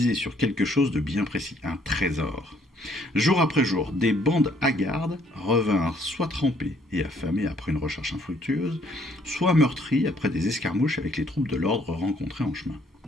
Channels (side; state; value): both; normal; correlation 0.65